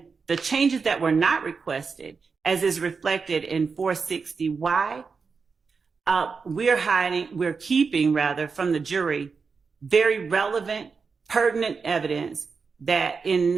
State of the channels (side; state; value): left; quieter; 5.1 dB